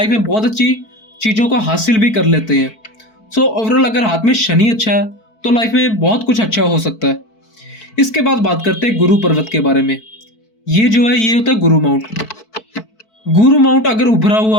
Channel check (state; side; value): late; right; 4.5 ms